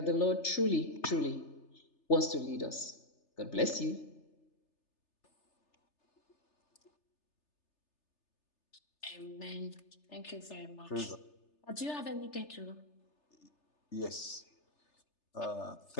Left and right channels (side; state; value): right; late; 3.3 ms